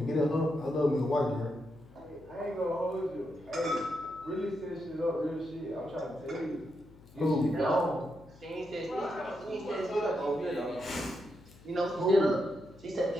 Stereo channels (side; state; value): left; noise; hum, 23 dB below the sound